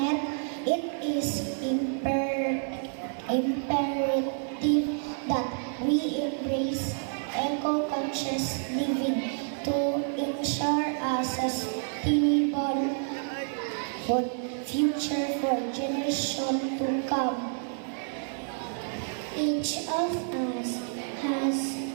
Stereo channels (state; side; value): silent; left; digital silence